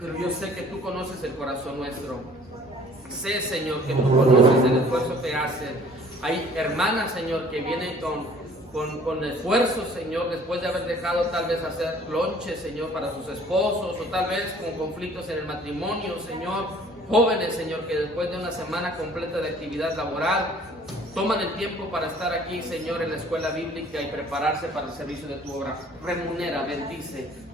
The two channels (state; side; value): normal; both; correlation 0.53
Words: yo sé que tú conoces el corazón nuestro. Sé, Señor, que tú conoces el esfuerzo que hacen. Hay hermanas, Señor, que vienen con esfuerzo, Señor, después de haber dejado tal vez hacer lonche, Señor, para sus esposos, o tal vez con conflictos en el matrimonio, Señor. Jóvenes, Señor, que después de una semana completa de actividad laboral, toman el tiempo para estar aquí, Señor, en la escuela bíblica y prepararse para el servicio de tu obra. Remunera, bendice.